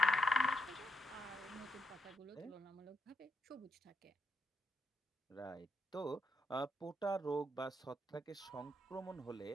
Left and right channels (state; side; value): normal; both; correlation 0.79